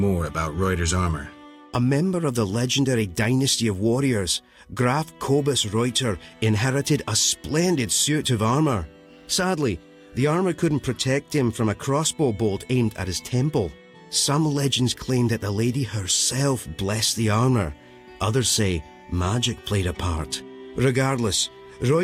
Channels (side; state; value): both; identical; correlation 1.00